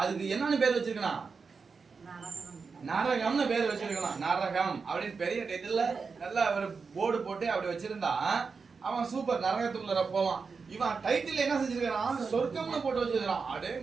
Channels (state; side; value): quieter; left; 5.0 dB